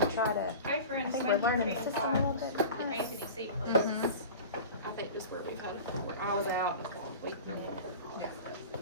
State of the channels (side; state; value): both; inverted; correlation -0.35